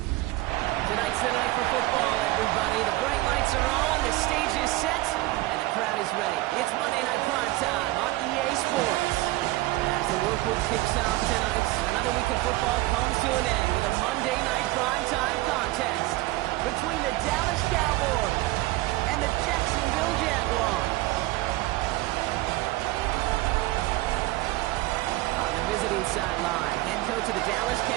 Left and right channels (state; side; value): quieter; left; 19.2 dB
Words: the night for football, everybody. The bright lights are on, the stage is set, and the crowd is ready. It's Monday Night Prime Time on EA Sports. As the work week kicks off tonight, another week of football comes to an end with a Monday Night Prime Time contest between the Dallas Cowboys and the Jacksonville Jaguars. On the visiting sideline, head coach of the Dallas